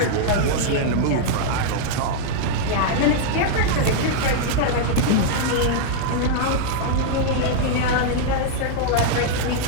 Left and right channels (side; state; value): both; different; correlation -0.01